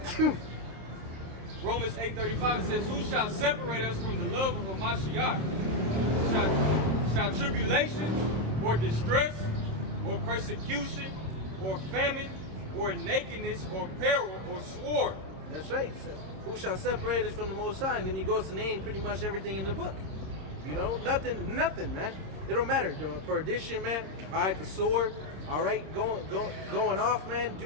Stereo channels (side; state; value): left; late; 26 ms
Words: Romans 8:35 says, "Who shall separate us from the love of Hamashiach? Shall tribulation, or distress, or persecution, or famine, or nakedness, or peril, or sword?" That's right. So, who shall separate us from the Most High? And then he goes to name pretty much everything in the book. You know, nothing, man. It don't matter. The perdition, man. All right, the sword. All right, going off, man.